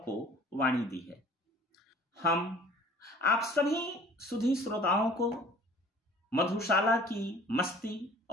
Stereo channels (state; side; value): normal; both; correlation 0.50